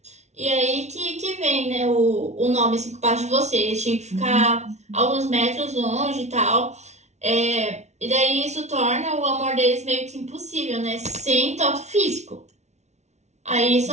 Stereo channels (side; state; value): left; late; 0.32 ms